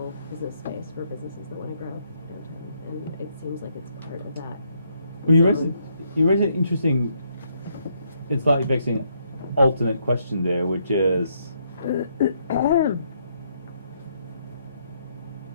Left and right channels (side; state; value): both; inverted; correlation -0.73